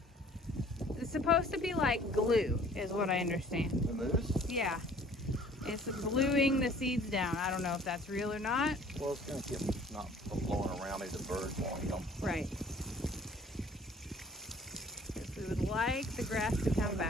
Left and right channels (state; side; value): normal; both; correlation 0.53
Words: it's supposed to be like glue, is what I understand. the mousse? Yeah. It's gluing the seeds down. I don't know if that's real or not. Well, it's going to keep them not from blowing around. Maybe the birds won't eat them. Right. Because we would like the grass to come